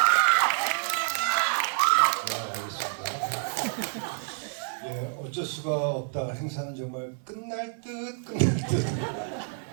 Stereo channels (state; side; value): silent; left; 58 dB below the other